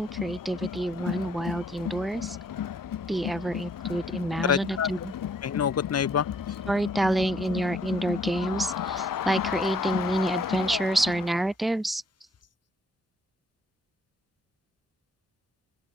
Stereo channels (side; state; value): both; normal; correlation 0.65